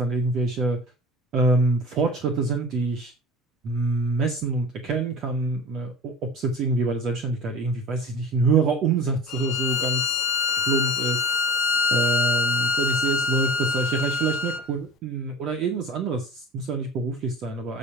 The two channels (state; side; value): normal; both; correlation 0.36